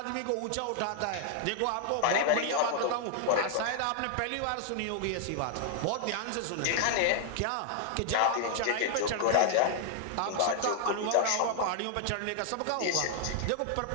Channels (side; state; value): both; different; correlation 0.00